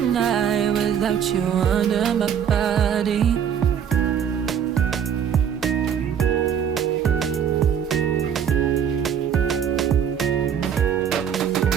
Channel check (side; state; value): left; quieter; 8.3 dB